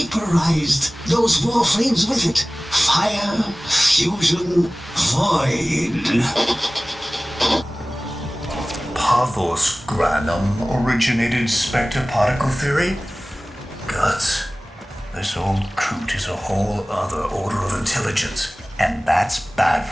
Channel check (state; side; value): normal; both; correlation 0.98